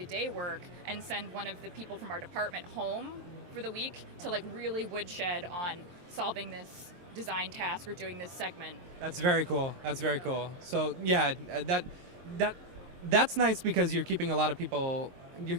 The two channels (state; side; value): late; left; 23 ms